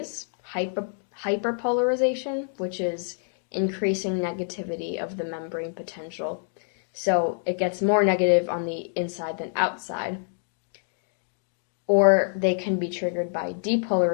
hyperpolarization, which is increasing negativity of the membrane potential. So it gets more negative on the inside than outside. Or they can be triggered by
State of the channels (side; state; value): right; silent; 60 dB below the other